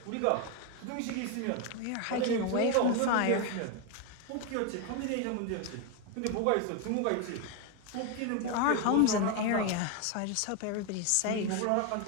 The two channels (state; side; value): different; both; correlation 0.02